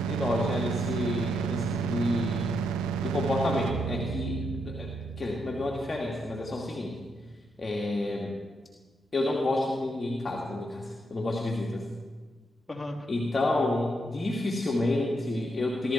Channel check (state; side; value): normal; both; correlation 0.79